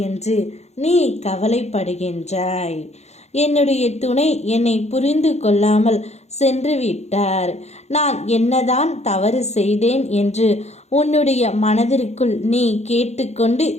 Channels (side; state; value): right; late; 0.32 ms